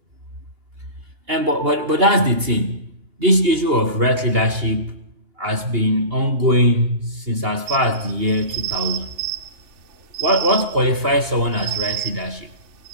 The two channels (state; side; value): late; left; 2.8 ms